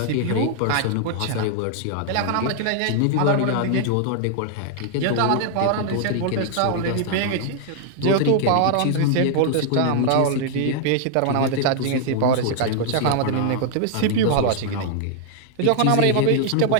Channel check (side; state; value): both; different; correlation 0.00